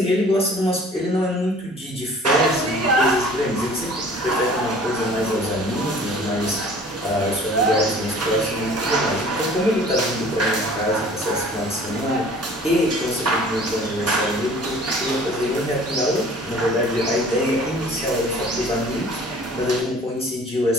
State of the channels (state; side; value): normal; both; correlation 0.49